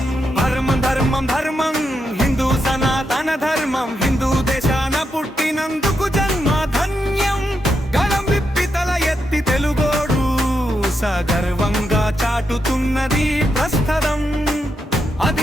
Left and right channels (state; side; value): normal; both; correlation 0.83